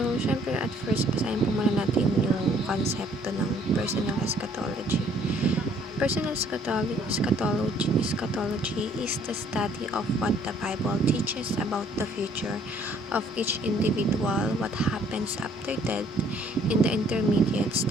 syempre at first basahin po muna natin yung konsepto ng personal eschatology. Personal eschatology is the study of what the Bible teaches about the future of each individual, what happens after death, in the intermediate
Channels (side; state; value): both; normal; correlation 0.61